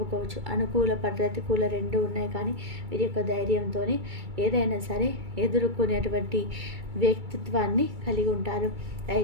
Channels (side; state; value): left; late; 2.3 ms